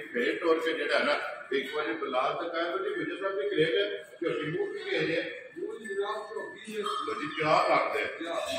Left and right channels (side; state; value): both; identical; correlation 1.00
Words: फेट तोड़ के जो है ना एक बार बलाल दिखाया जी गुजर साहब की ग्रेट झोटी मुँह की गई है जी क्या रखते